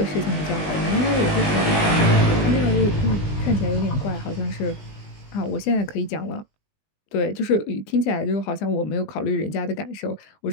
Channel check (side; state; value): right; late; 20 ms